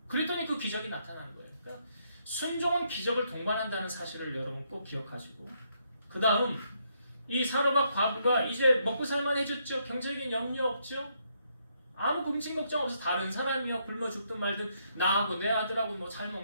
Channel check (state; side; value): inverted; both; correlation -0.75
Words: 그랬더니 그 기적이 나타난 거예요. 그러니까 순종은 기적을 동반한다는 사실을 여러분 꼭 기억하시고, 그 다음 이 사르밧 과부가 이제 먹고 살만해졌죠. 경제적인 염려 없죠. 아무 금친 걱정 없어. 다른 사람이요 굶어 죽든 말든 나하고 내 아들하고 뭐 잘